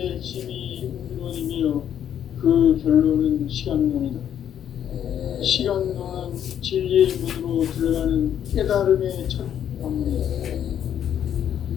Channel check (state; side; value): quieter; right; 9.7 dB